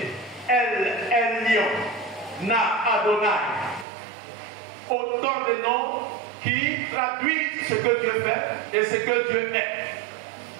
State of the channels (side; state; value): left; drops out; at 3.9 s